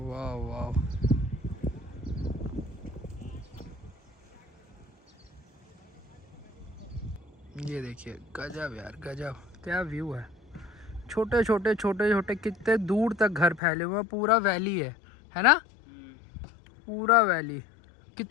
वाह। ये देखिए गजब यार गजब, क्या व्यू है। छोटे छोटे छोटे छोटे कितने दूर तक घर फैले हुए हैं, पूरा वैली है ना, पूरा वैली।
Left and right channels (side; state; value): right; drops out; at 13.6 s